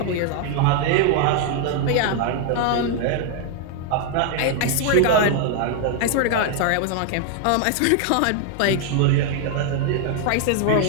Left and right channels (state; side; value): different; both; correlation 0.00